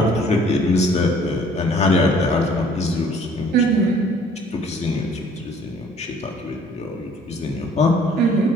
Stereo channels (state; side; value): normal; both; correlation 0.56